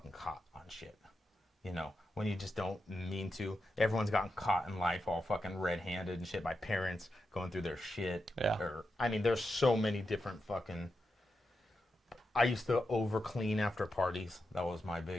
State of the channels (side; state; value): both; normal; correlation 0.87